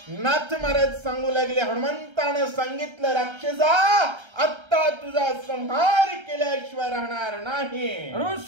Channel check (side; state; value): left; late; 1.3 ms